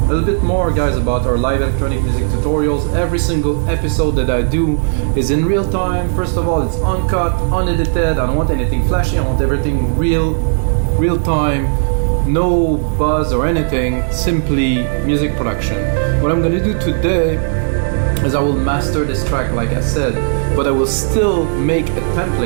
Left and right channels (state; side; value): silent; left; digital silence